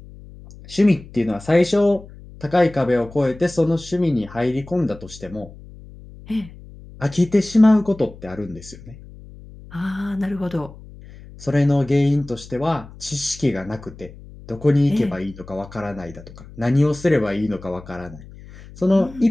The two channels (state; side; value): noise; left; hum, 18 dB below the sound